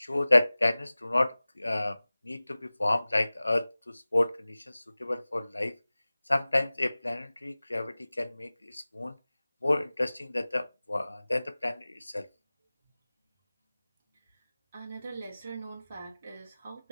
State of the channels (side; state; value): both; inverted; correlation -0.99